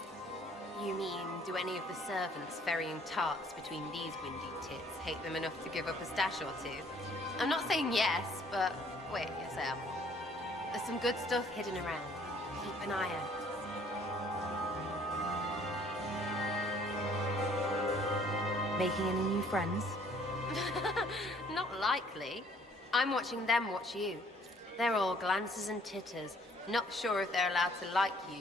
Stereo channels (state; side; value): normal; both; correlation 0.60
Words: You mean, do any of the servants ferrying tarts between these windy tits hate them enough to give up a stash or two? I'm not saying yes, but wait yourself. There's some good stuff hidden around. Keep an eye out. Making any new friends? Not likely. I'm watching them watch you. They're all glances and titters. Not sure if they're allowed to like